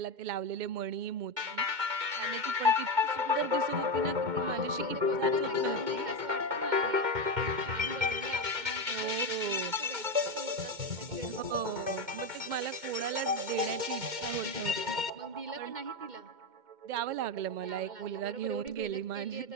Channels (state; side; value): late; left; 2.1 ms